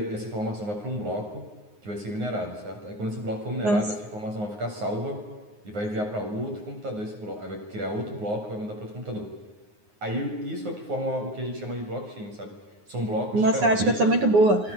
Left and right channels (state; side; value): late; left; 9.6 ms